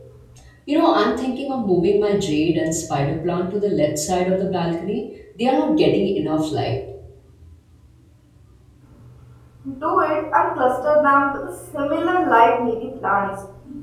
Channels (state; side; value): identical; both; correlation 1.00